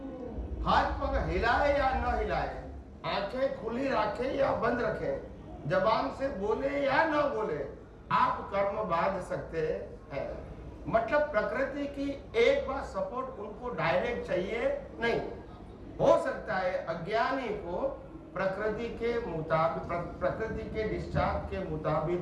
हाथ पग हिलाए या न हिलाए, आंखें खुली रखे या बंद रखें, जबान से बोले या न बोले, आप कर्म बांध सकते हैं। मतलब प्रकृति की एक बार सपोर्ट उनको डायरेक्ट चाहिए नहीं। हो सकता है अज्ञानी को प्रकृति के मुताबिक, प्रकृति के डिस्चार्ज के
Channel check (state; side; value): identical; both; correlation 1.00